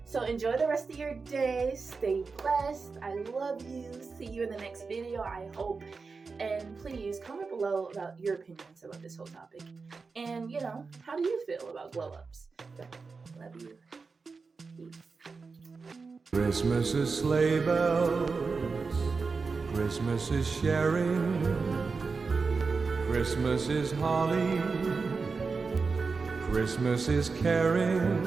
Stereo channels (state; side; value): quieter; left; 4.6 dB